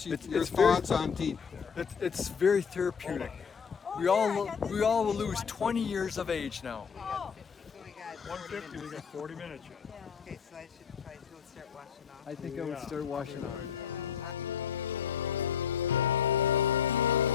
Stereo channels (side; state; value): right; quieter; 7.0 dB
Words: your It's thoughts on deep? It's very therapeutic. We all will lose 20 years of age now. So we got 150, we got 40 minutes yet. Okay, so I should probably go start washing off. I think I would start washing off.